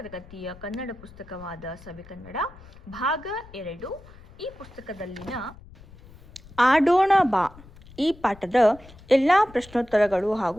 ಕನ್ನಡ ಪುಸ್ತಕವಾದ ಸವಿಕನ್ನಡ ಭಾಗ 2 ಈ ಪುಸ್ತಕದಲ್ಲಿನ ಆಡೋಣ ಬಾ ಈ ಪಾಠದ ಎಲ್ಲ ಪ್ರಶ್ನೋತ್ತರಗಳು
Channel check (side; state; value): left; noise; rumble, 21 dB below the sound